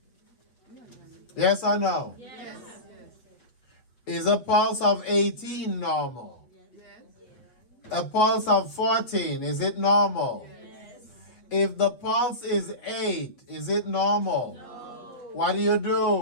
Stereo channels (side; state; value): right; late; 8.2 ms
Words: Yes or no? Yes. Is a pulse of 18 normal? A pulse of 14, is it normal? Yes. If the pulse is 8, is it normal? No. What do you